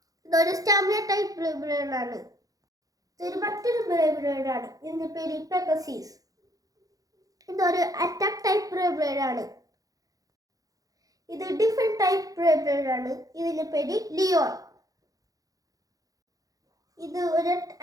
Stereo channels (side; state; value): left; late; 0.17 ms